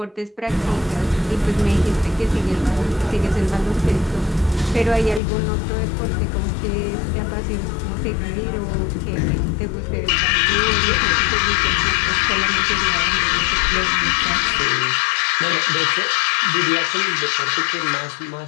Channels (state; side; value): drops out; right; at 5.2 s